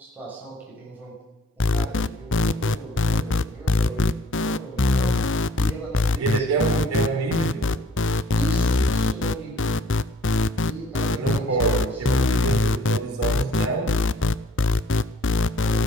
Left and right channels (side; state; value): both; normal; correlation 0.57